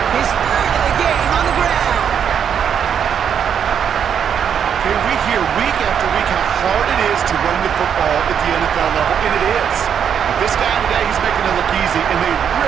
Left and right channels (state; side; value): quieter; left; 8.0 dB